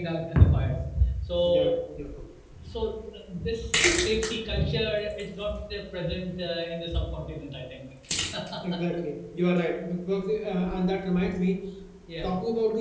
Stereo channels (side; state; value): both; identical; correlation 1.00